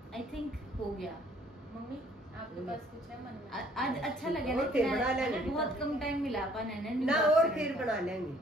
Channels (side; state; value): both; normal; correlation 0.60